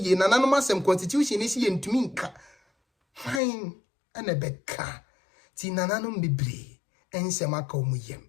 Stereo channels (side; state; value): right; drops out; at 3.4 s